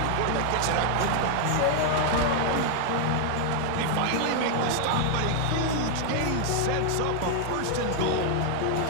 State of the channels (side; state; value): both; different; correlation 0.00